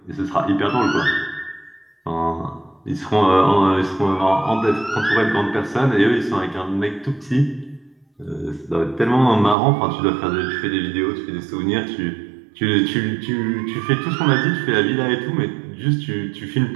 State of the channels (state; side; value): drops out; left; at 9.6 s